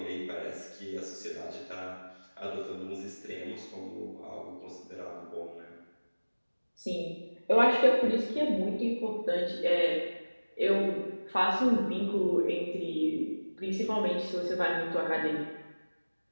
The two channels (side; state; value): both; inverted; correlation -1.00